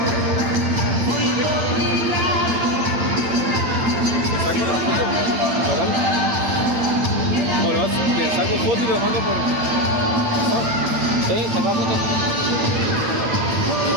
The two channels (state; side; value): late; left; 8.9 ms